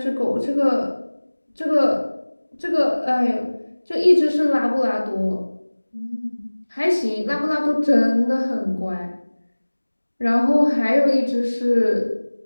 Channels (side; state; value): both; inverted; correlation -1.00